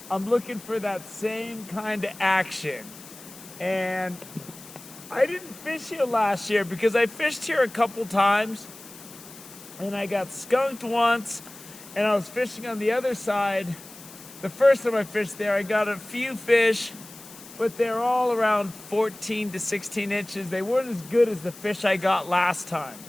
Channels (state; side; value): noise; left; hiss, 18 dB below the sound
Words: I'm looking for that same kind of action. And I didn't fish here last year because I fished here a couple times, and I got skunked once, and I was fishing on the other side. The first time I fished there, I got a few fish, but they're all around 14 to 16 inches. They weren't as good as the fish I got last time.